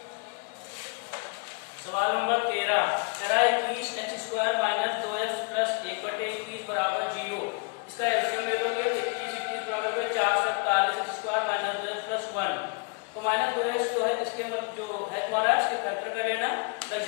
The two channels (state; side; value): quieter; right; 37.0 dB